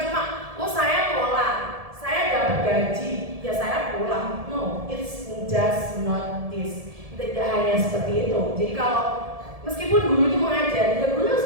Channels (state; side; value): late; left; 1.7 ms